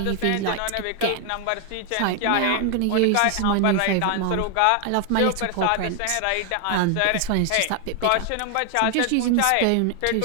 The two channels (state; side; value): different; both; correlation 0.00